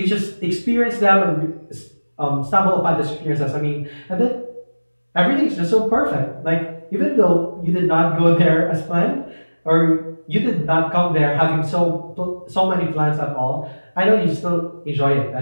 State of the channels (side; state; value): both; inverted; correlation -1.00